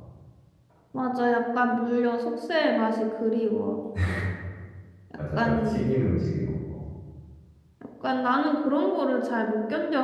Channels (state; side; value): identical; both; correlation 1.00